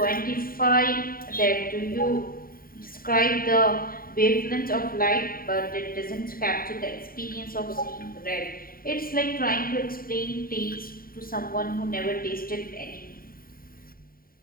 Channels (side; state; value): right; late; 0.42 ms